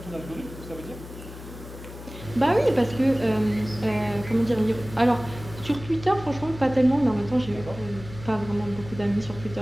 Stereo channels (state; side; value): noise; left; hum, 14 dB below the sound